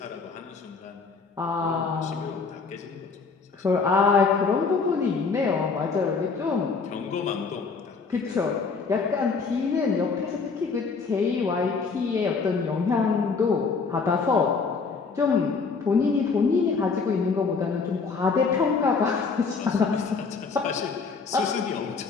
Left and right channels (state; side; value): quieter; right; 4.9 dB